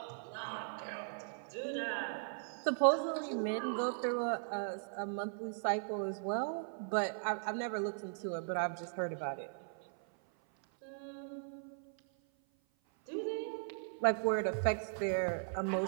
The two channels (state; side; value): silent; left; 52 dB below the other